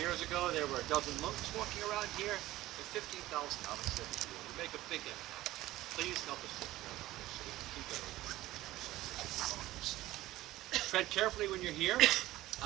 ago, there were a dozen monks walking around here, and 15,000 novices every year. We make a big impact. Please help us take care of this so we can keep it open. Tread carefully when you're here.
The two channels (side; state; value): left; quieter; 16.4 dB